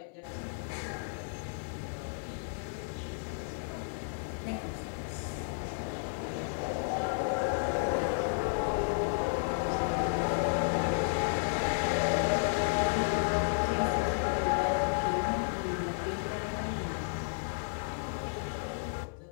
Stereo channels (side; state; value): right; silent; 55 dB below the other